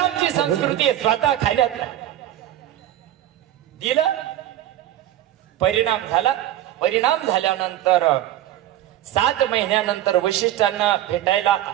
संस्कृती स्वतः खाण्यात दिलं. परिणाम झाला. परिणाम झाल्यानंतर 7 महिन्यानंतर वशिष्ठांना भेटायला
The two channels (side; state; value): left; quieter; 12.9 dB